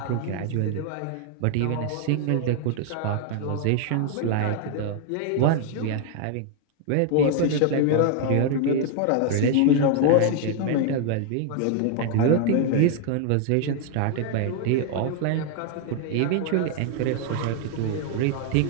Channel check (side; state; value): both; different; correlation 0.00